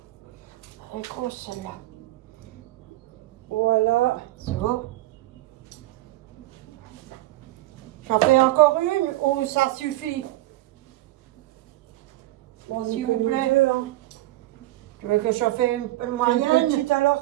Elle est grosse, celle-là. Voilà. C'est bon. J'en fais encore une ou ça suffit? Bon, S'il vous plaît. Hein. Tu veux que j'en fasse une Une moyenne? petite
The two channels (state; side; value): quieter; left; 16.8 dB